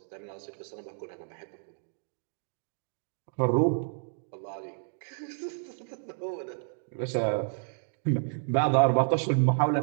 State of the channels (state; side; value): silent; left; digital silence